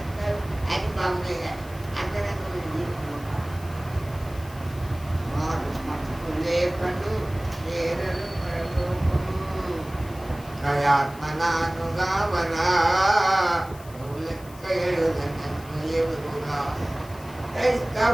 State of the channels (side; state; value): left; noise; hiss, 21 dB below the sound